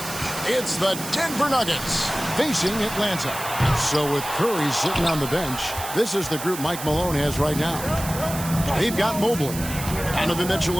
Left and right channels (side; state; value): right; noise; hiss, 9 dB below the sound